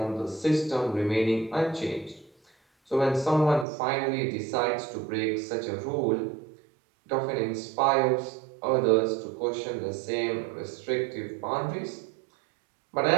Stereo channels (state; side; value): drops out; left; at 3.7 s